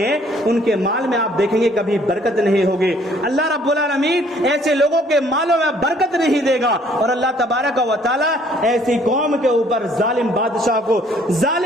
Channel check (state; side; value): normal; both; correlation 0.61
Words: ان کے مال میں آپ دیکھیں گے کبھی برکت نہیں ہوگی۔ اللہ رب العالمین ایسے لوگوں کے مالوں میں برکت نہیں دے گا، اور اللہ تبارک و تعالی ایسی قوم کے اوپر ظالم بادشاہ کو،